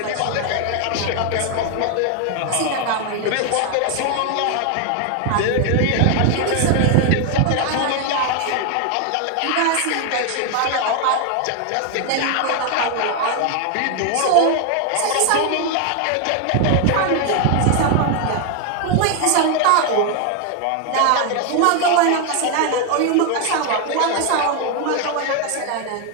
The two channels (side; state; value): both; different; correlation 0.01